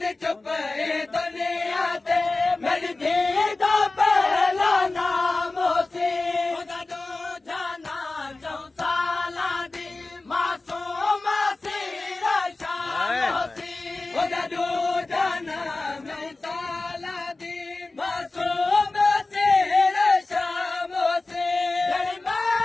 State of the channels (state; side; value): quieter; right; 3.3 dB